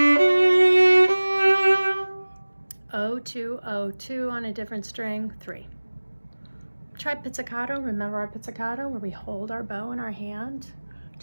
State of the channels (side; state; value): both; inverted; correlation -1.00